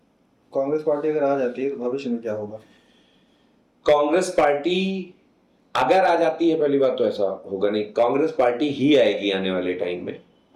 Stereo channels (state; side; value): identical; both; correlation 1.00